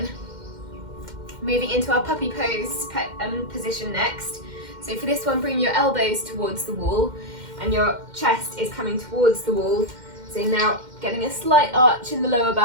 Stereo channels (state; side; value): late; left; 2.1 ms